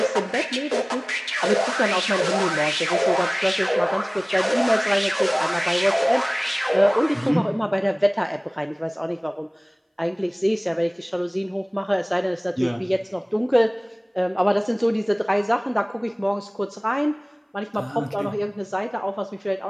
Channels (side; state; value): both; identical; correlation 1.00